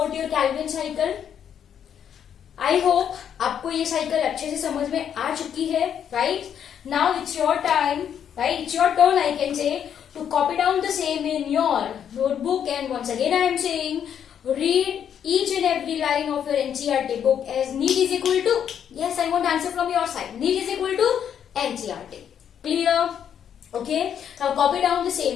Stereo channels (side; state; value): right; quieter; 8.8 dB